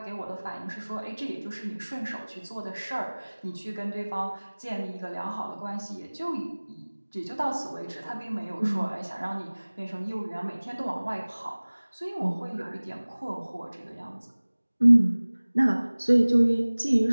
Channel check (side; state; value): both; inverted; correlation -1.00